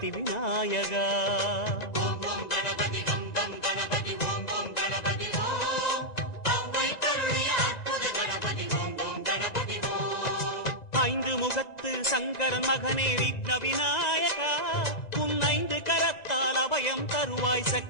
விநாயகா. ஓம் ஓம் கணபதி கம் கம் கணபதி ஓம் ஓம் கணபதி ஓம். அவ்வை கருளிய அற்புத கணபதி ஓம் ஓம் கணபதி ஓம். ஐந்து முகத்து சங்கரன் மகனே விக்ன விநாயகா, உன் ஐந்து கரத்தால் அபயம் தருவாய்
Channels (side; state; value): right; late; 1.9 ms